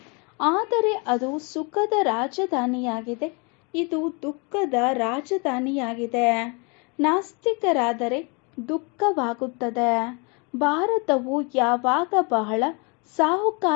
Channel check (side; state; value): right; quieter; 31.9 dB